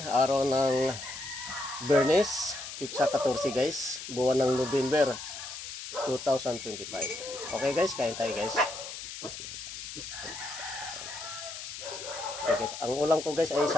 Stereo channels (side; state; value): left; noise; hiss, 9 dB below the sound